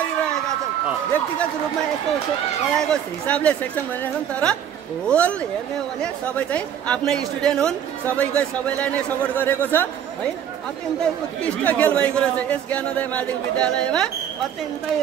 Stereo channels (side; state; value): left; quieter; 9.3 dB